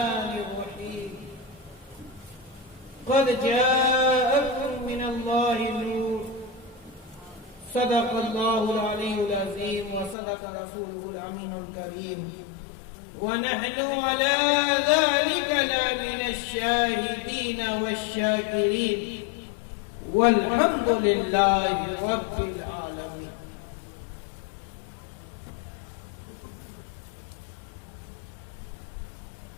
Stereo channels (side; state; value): right; drops out; at 10.2 s